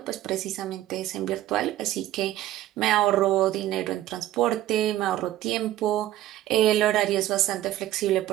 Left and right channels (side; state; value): left; quieter; 14.0 dB